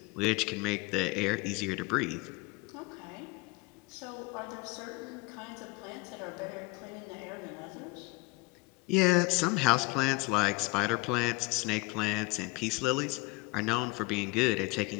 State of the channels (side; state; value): right; quieter; 25.8 dB